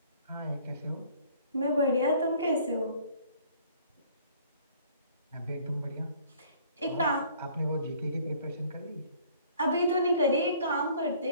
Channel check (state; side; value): inverted; both; correlation -0.56